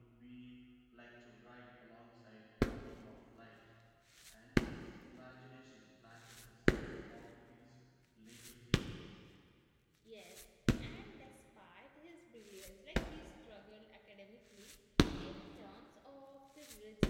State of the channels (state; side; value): identical; both; correlation 1.00